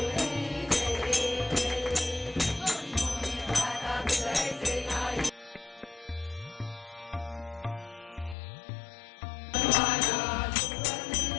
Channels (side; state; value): right; drops out; at 8.3 s